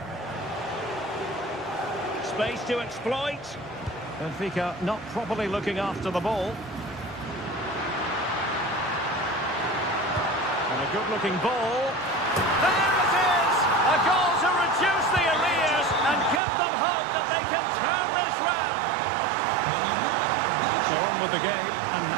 Space to exploit. Benfica not properly looking after the ball. And a good-looking ball. There it is! A goal to reduce the arrears and give them hope that they can turn this round. So on with the game, and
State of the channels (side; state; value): left; drops out; at 16.4 s